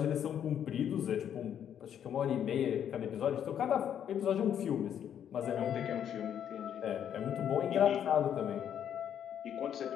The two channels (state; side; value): quieter; right; 9.3 dB